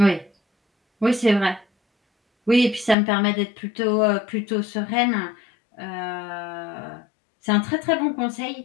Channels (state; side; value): drops out; right; at 3.0 s